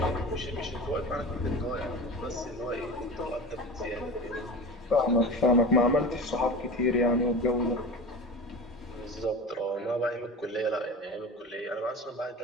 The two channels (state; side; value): normal; both; correlation 0.32